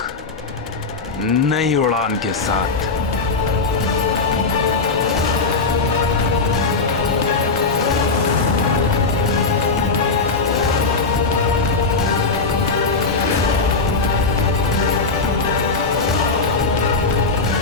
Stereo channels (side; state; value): right; quieter; 4.1 dB